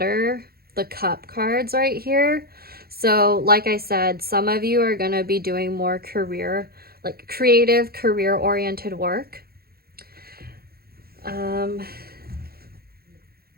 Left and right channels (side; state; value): left; late; 0.44 ms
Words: cup cards right here. So like I said, some of you are going to be doing more creative, career-oriented work.